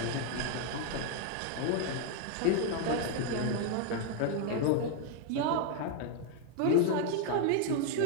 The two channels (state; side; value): different; both; correlation 0.01